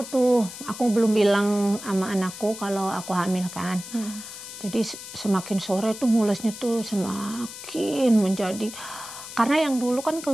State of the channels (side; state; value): left; noise; hiss, 12 dB below the sound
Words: tuh, aku belum bilang sama anakku kalau aku hamil kan. Jadi semakin sore tuh mulesnya tuh semakin menjadi, karena yang dulu kan